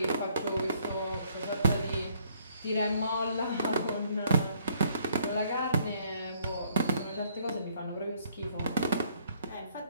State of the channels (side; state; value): both; inverted; correlation -0.65